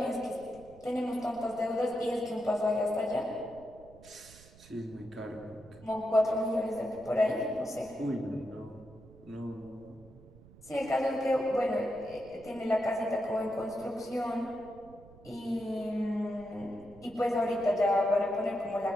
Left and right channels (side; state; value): right; noise; rumble, 22 dB below the sound